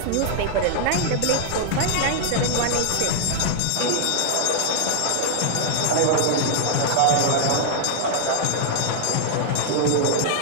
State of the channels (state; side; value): different; both; correlation 0.00